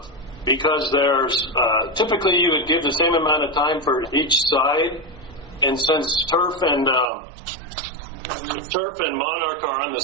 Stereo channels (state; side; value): drops out; left; at 7.1 s